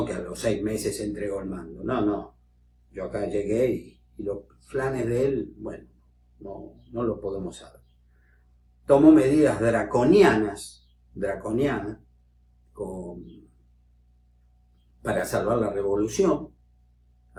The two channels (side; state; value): both; identical; correlation 1.00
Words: que a los 6 meses entregó el mando. No. Yo acá llegué y los planes de él, bueno, no lo podemos saber. Tomó medidas draconianas para salvar la revolución.